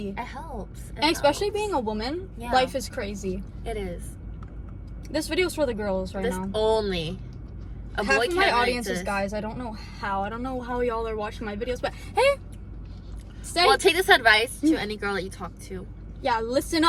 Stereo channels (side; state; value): both; identical; correlation 1.00